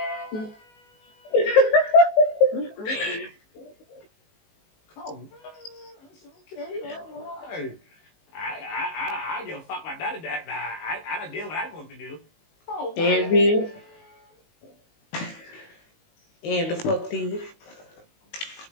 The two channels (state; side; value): late; right; 19 ms